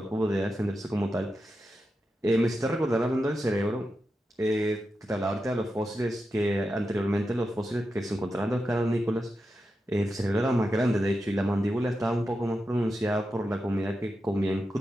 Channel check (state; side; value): normal; both; correlation 0.89